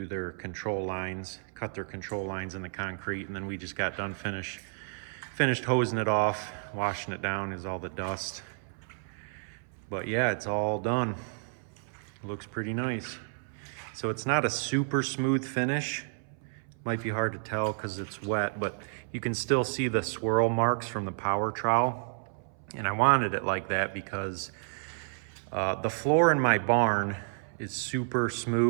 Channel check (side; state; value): left; silent; 57 dB below the other